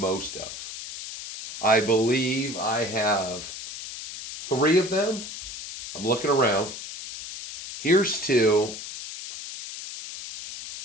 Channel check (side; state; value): left; noise; hiss, 10 dB below the sound